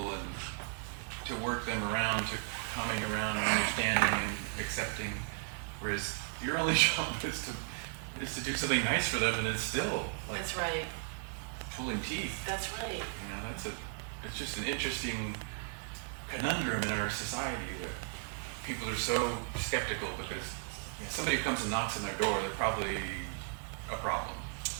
and to work them around, to coming around and understanding and accepting, whereas your only job is to do something nice for them, and it's still like That's right. pulling teeth. That's right. You know, it's just an interesting conundrum in our society that people are so skeptical because somebody comes and knocks on their door, they're probably a problem.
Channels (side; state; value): left; silent; 54 dB below the other